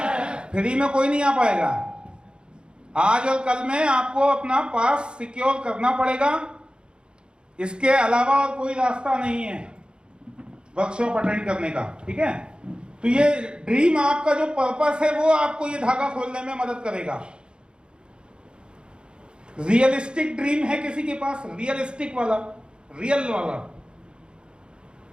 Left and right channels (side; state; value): left; late; 0.052 ms